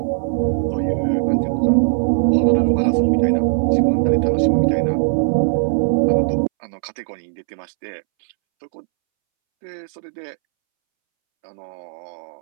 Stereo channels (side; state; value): left; silent; 66 dB below the other